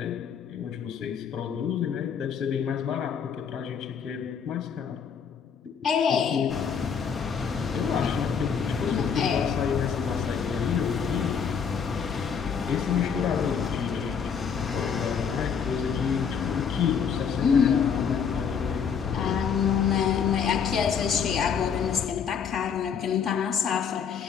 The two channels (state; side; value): quieter; right; 6.9 dB